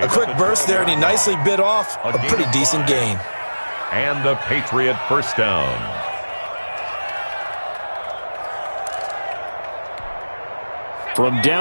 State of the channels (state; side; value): inverted; both; correlation -1.00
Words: A quick burst there, and he nicely bit off a pretty decent gain. And the Patriot 1st down. From